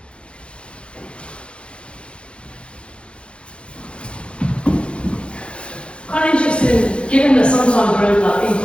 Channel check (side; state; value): right; late; 0.058 ms